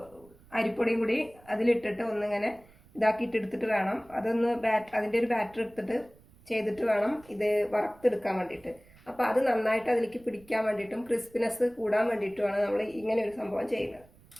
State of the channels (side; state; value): right; noise; rumble, 26 dB below the sound